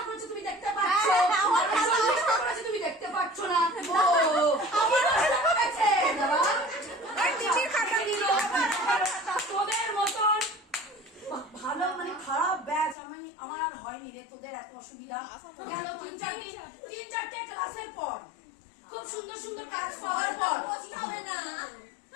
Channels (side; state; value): right; drops out; at 13.0 s